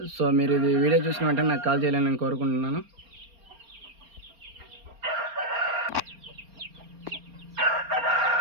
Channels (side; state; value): left; late; 4.3 ms